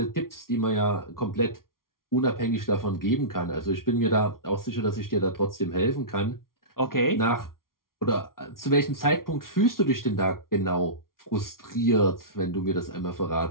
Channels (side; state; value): right; late; 0.92 ms